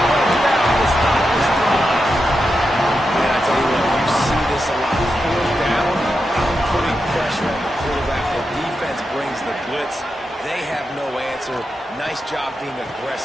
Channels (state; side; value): normal; both; correlation 0.88